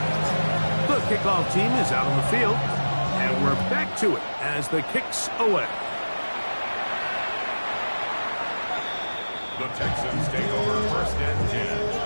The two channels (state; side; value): inverted; both; correlation -1.00